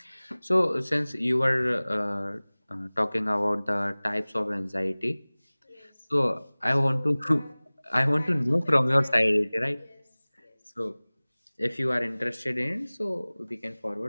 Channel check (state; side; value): inverted; both; correlation -1.00